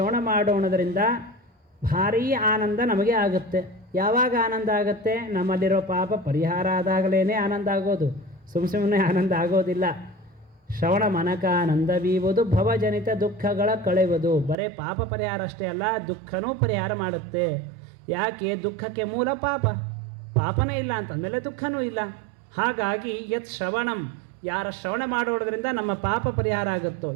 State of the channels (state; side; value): drops out; left; at 14.6 s